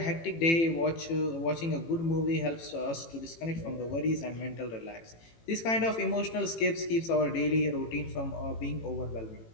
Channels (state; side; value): late; right; 18 ms